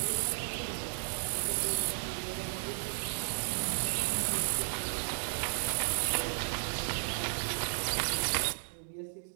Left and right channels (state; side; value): silent; left; digital silence